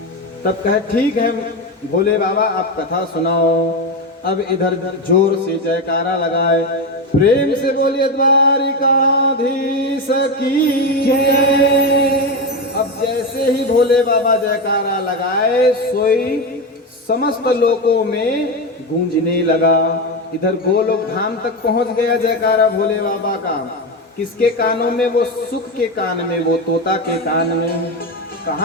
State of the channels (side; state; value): both; normal; correlation 0.15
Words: तब कहे ठीक है भोले बाबा आप कथा सुनाओ। अब इधर जोर से जयकारा लगाए, प्रेम से बोलिए द्वारिकाधीश की जय। अब जैसे ही भोले बाबा जयकारा लगाए, सोई समस्त लोकों में गूंजने लगा। इधर गोलोक धाम तक पहुंच गया जयकारा भोले बाबा का। किसके कानों में? वो सुख के कान में, वो तोता के कान में।